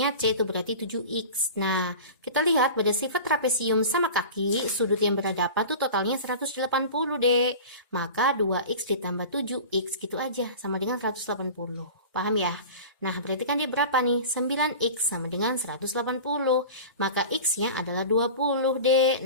C itu berarti 7X. Nah, kita lihat pada sifat trapesium sama kaki, sudut yang berhadapan tuh totalnya 180, Dek. Maka 2X ditambah 7X gitu aja, sama dengan 180. Paham ya? Nah, berarti kan dia berapa nih? 9X sama dengan 180. Maka X-nya adalah 20, Dek.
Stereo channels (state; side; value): inverted; both; correlation -0.35